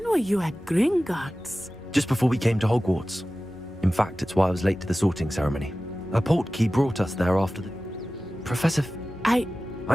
were you at Gringotts? Just before we came to Hogwarts. In fact, it's why I was late to the sorting ceremony. A portkey brought us there after the... Professor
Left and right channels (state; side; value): normal; both; correlation 0.96